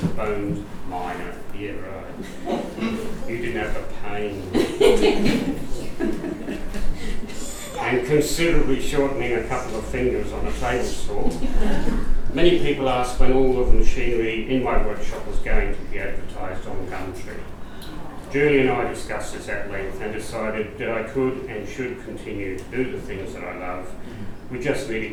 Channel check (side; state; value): both; identical; correlation 1.00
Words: bones, yeah, right. You didn't have the pain. And considerably shortening a couple of fingers on a table saw. Many people asked when all of the machinery in my workshop was going to be advertised on Gumtree. Julie and I discussed this at length and decided that I could and should continue to do the things that I love. We just